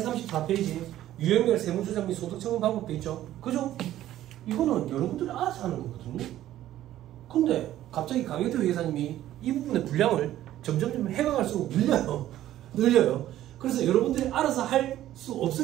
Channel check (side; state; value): left; quieter; 13.2 dB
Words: 유형별 세무조정 및 소득처분 방법도 있죠? 그죠? 이거는 여러분들이 알아서 하는 거거든요. 근데 갑자기 강혜태 회계사님이 이 부분의 분량을 점점 해가갈수록 늘려요. 그래서 여러분들이 알아서 할 수